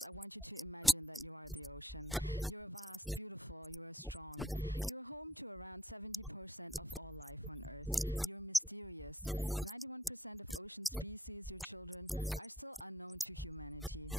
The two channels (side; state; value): both; normal; correlation 0.66